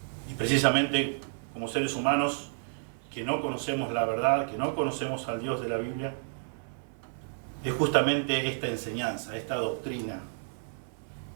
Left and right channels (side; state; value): left; silent; 57 dB below the other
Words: y precisamente como seres humanos que no conocemos la verdad, que no conocemos al Dios de la Biblia, es justamente esta enseñanza, esta doctrina